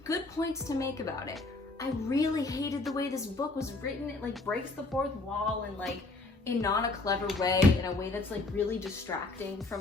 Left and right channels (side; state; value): right; quieter; 3.2 dB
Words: Good points to make about it. I really hated the way this book was written. It breaks the fourth wall and in not a clever way, in a way that's really distracting